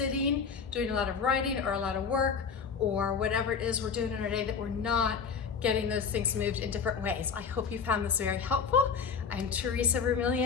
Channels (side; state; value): right; quieter; 6.2 dB